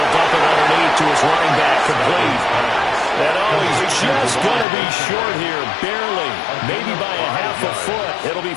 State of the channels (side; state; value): right; drops out; at 4.7 s